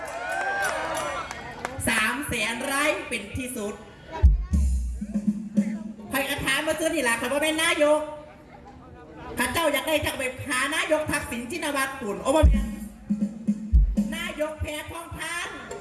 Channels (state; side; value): identical; both; correlation 1.00